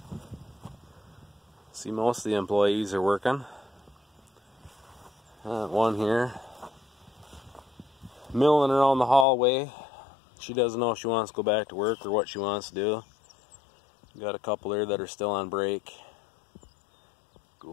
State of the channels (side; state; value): right; drops out; at 9.2 s